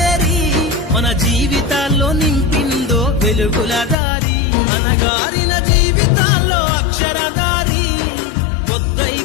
మన జీవితాల్లో నింపిందో వెలుగుల దారి అనగారిన జీవితాల్లో అక్షరధారి పొద్దై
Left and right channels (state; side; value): drops out; right; at 4.0 s